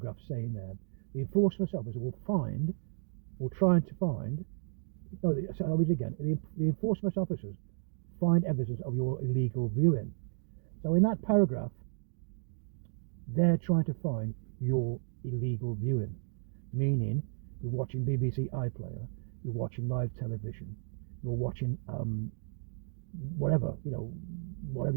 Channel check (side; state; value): left; silent; digital silence